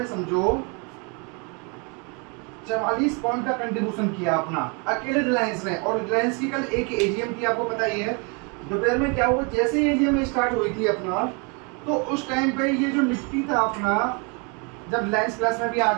समझो 44 पॉइंट का कंट्रीब्यूशन किया अपना, अकेले रिलायंस ने। और रिलायंस की कल एक एजीएम थी, आपको पता ही है। दोपहर में क्या हुआ, जैसे ही एजीएम स्टार्ट हुई थी अपना, तो उस टाइम पे ये जो निफ्टी था अपना, जब रिलायंस प्लस में भी आ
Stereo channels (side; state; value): left; quieter; 33.5 dB